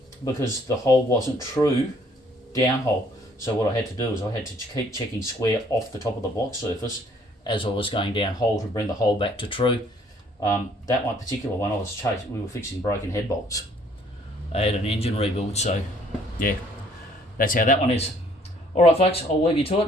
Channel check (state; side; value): normal; both; correlation 0.61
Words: because the hole wasn't true down hole. So what I had to do is I had to keep checking square off the top of the block surface as I was going down hole to bring the hole back to true. That one particular one, we were fixing broken head bolts. I had an engine rebuild, so yeah, that's how that one is. All right, folks, I'll leave you to